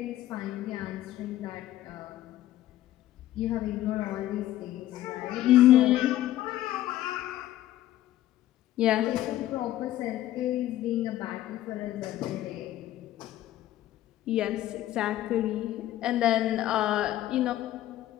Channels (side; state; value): right; quieter; 13.8 dB